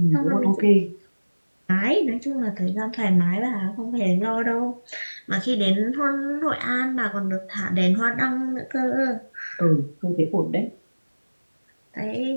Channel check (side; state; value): both; inverted; correlation -1.00